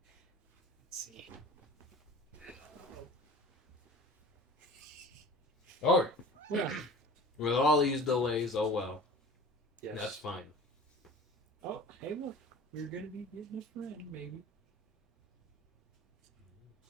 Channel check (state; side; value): normal; both; correlation 0.41